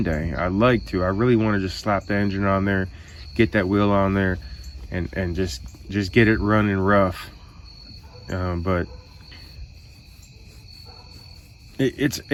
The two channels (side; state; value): both; identical; correlation 1.00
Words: I'd like to. I really want to just slap the engine on there, get that wheel on there, and just get it running rough. But